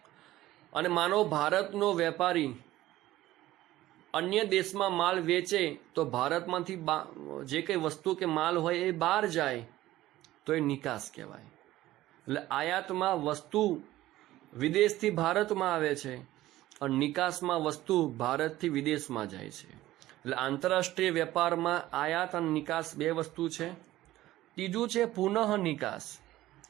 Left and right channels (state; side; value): quieter; left; 15.7 dB